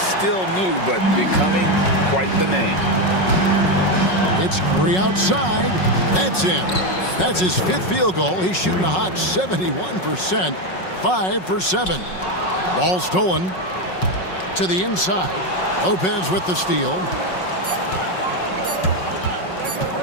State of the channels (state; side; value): late; right; 5.4 ms